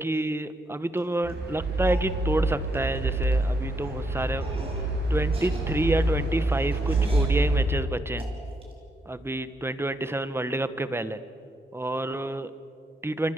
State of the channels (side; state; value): both; normal; correlation 0.78